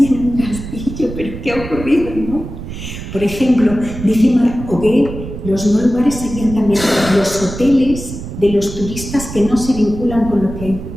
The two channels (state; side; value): noise; right; rumble, 10 dB below the sound